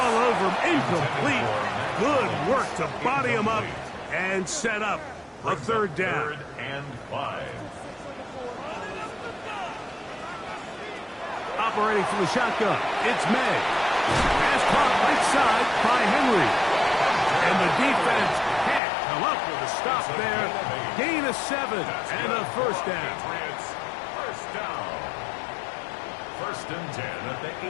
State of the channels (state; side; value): drops out; right; at 18.8 s